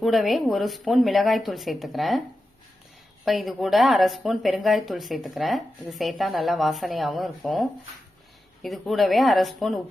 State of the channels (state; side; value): normal; both; correlation 0.91